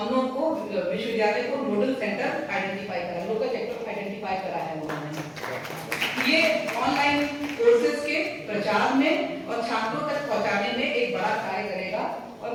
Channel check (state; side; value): identical; both; correlation 1.00